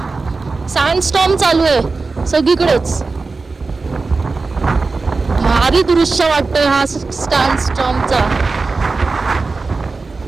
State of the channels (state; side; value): quieter; left; 4.0 dB